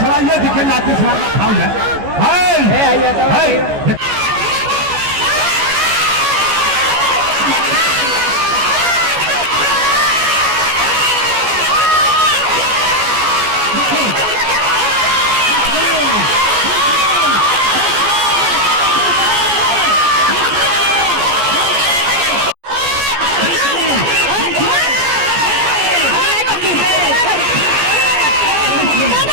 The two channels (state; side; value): late; left; 14 ms